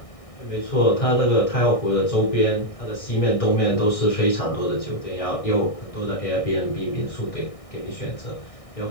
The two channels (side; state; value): right; late; 1.6 ms